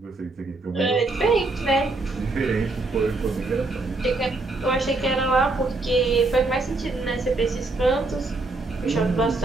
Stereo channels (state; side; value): quieter; left; 3.2 dB